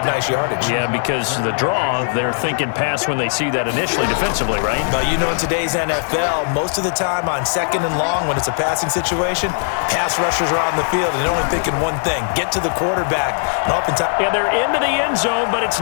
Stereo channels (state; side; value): silent; right; 62 dB below the other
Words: nice yardage. Yeah, because the draw, they're thinking pass when they see that initially defensively, right? But you know, in today's NFL, most of the time on 2nd and long, when it's a passing situation, pass rushers are on the field and they're only thinking one thing: get to the quarterback. And oftentimes, yeah, they're into the end zone, but it's